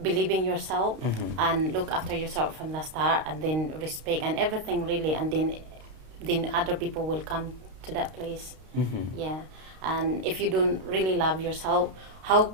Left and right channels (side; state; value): left; late; 32 ms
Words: yourself and look after yourself from the start, and then respect and everything really, and then other people will come to that place. Yeah. And if you don't really love yourself, how